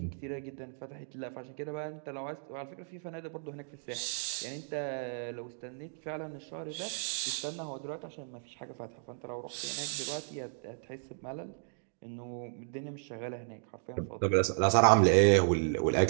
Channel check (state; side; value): silent; left; digital silence